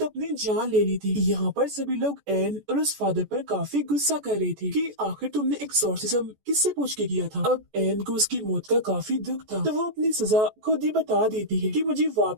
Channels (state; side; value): late; left; 14 ms